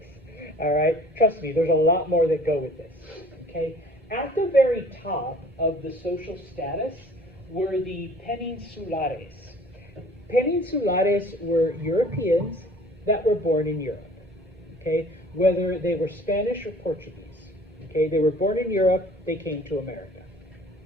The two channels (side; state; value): both; normal; correlation 0.51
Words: all right? Trust me, there's a lot more that go with this, okay? At the very top of the social status were the peninsulares. Peninsulares were Europeans that were born in Europe, okay? Whether they were Spanish or Portuguese, okay? They were born in Europe, they came to America.